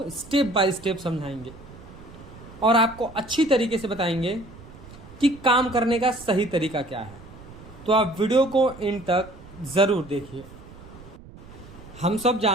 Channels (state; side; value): noise; right; rumble, 19 dB below the sound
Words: स्टेप बाय स्टेप समझाएंगे और आपको अच्छी तरीके से बताएंगे कि काम करने का सही तरीका क्या है। तो आप वीडियो को इन तक ज़रूर देखिए। हम सब